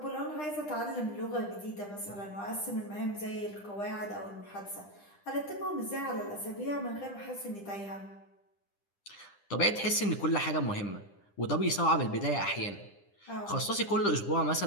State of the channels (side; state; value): right; late; 9.9 ms